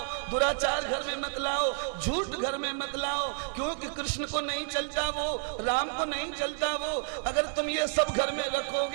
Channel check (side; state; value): left; silent; 58 dB below the other